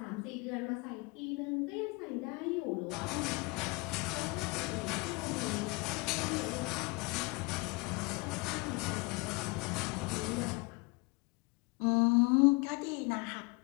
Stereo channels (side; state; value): right; quieter; 27.5 dB